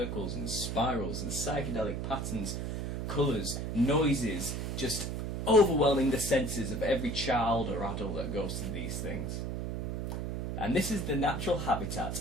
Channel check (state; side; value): noise; right; hum, 3 dB below the sound